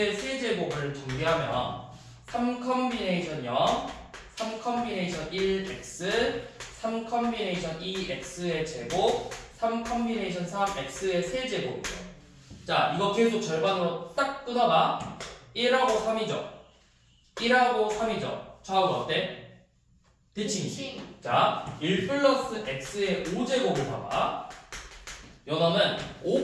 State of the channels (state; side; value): identical; both; correlation 1.00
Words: 세제곱을 전개하면 3 컨비네이션 0, 3 컨비네이션 1x, 3 컨비네이션 2x의 제곱, 3 컨비네이션 3x의 세제곱이죠. 자, 이거 계속 절반으로 딱 끊어봐. 1하고 3이죠. 1하고 3이죠. 좌우가 어때? 대칭이지. 자, 1 플러스 x의 5제곱을 봐봐. 요놈은